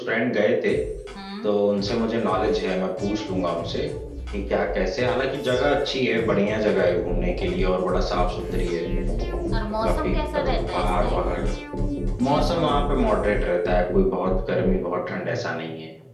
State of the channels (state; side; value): identical; both; correlation 1.00